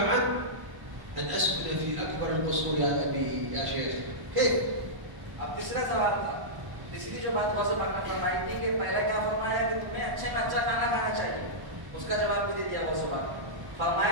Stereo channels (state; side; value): late; left; 1.1 ms